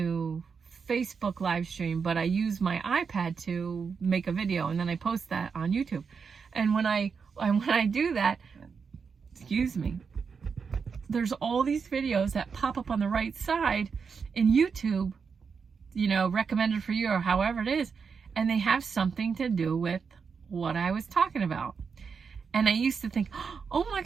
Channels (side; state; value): left; quieter; 5.8 dB